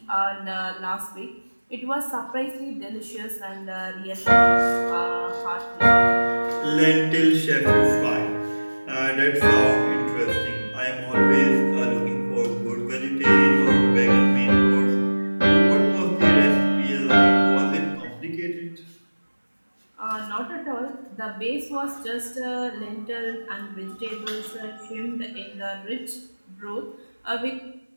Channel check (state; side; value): inverted; both; correlation -1.00